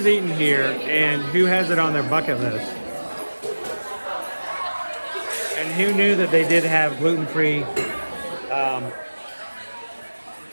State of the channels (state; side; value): inverted; both; correlation -1.00